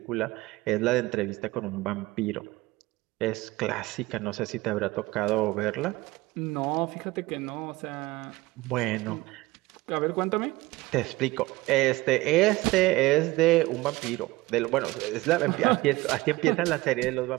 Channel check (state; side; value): quieter; left; 20.1 dB